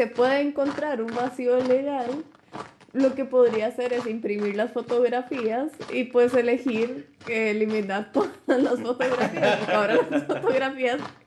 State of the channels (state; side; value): identical; both; correlation 1.00